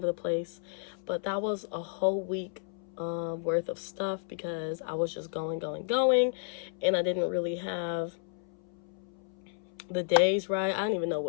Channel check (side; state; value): right; silent; 57 dB below the other